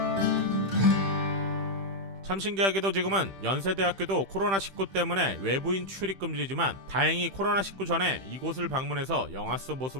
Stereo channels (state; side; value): late; left; 15 ms